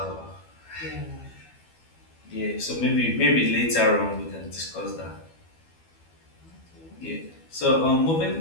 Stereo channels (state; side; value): late; right; 12 ms